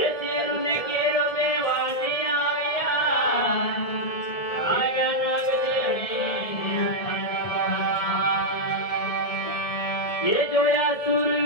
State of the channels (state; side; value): late; right; 1.7 ms